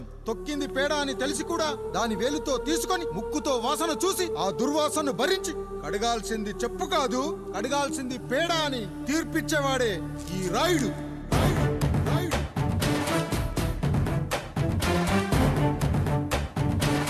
తొక్కింది పేడ అని తెలిసి కూడా దాని వేలుతో తీసుకొని ముక్కుతో వాసన చూసి ఆ దుర్వాసనను భరించి కడగాల్సింది చెప్పు కాదు, కడగాల్సింది పేడ అని తీర్పిచ్చేవాడే ఈ రాయుడు.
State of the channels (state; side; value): identical; both; correlation 1.00